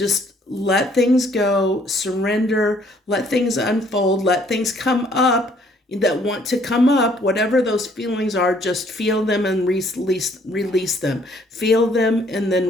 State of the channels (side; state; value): both; normal; correlation 0.63